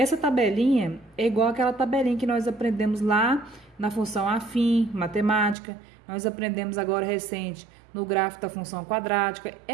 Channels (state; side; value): drops out; left; at 5.6 s